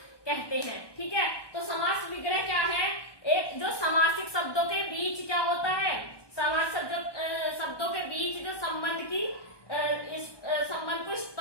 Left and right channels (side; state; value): right; late; 1.2 ms